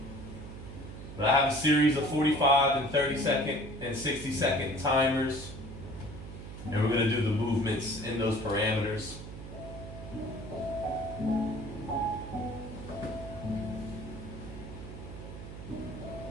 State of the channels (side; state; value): right; noise; hum, 11 dB below the sound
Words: But I have a series of 45 and 30 second and 60 second timers, and we're going to do the movements in those parameters.